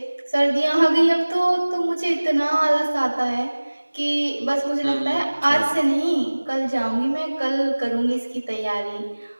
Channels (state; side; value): inverted; both; correlation -1.00